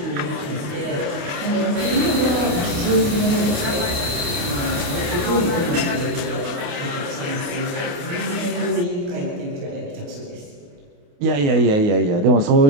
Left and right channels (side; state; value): left; late; 28 ms